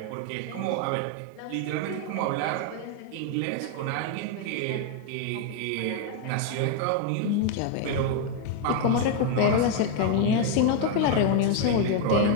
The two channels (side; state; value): both; different; correlation 0.01